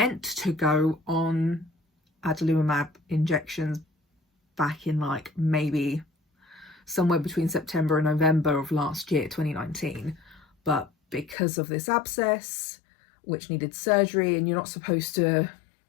to go on Adalimumab injections back in maybe somewhere between September and November of last year, 2019, but because of this abscess, which needed surgery, and you're not supposed to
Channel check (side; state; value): right; drops out; at 11.4 s